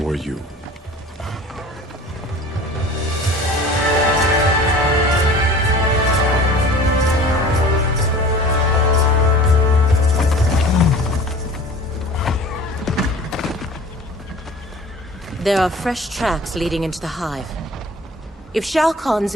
were you. There are fresh tracks leading into the hive. If Shao Kahn's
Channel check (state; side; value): normal; both; correlation 0.42